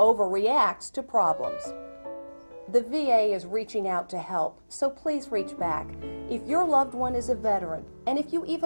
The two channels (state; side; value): inverted; both; correlation -1.00